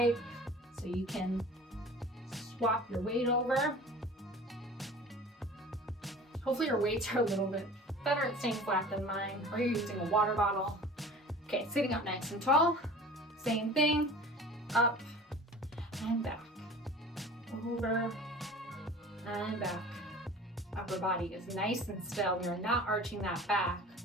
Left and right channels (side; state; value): both; normal; correlation 0.41